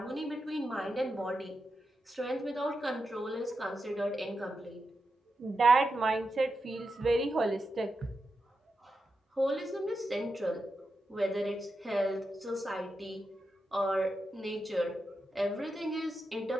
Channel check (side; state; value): both; normal; correlation 0.88